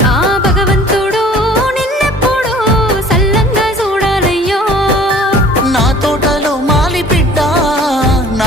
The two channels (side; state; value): both; normal; correlation 0.50